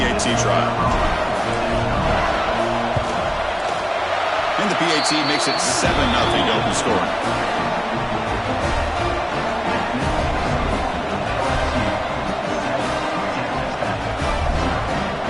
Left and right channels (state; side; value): identical; both; correlation 1.00